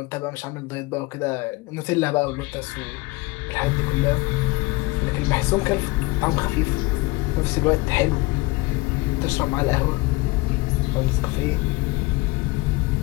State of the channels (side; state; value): right; quieter; 22.7 dB